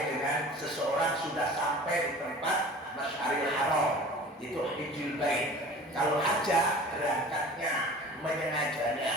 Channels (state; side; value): normal; both; correlation 0.41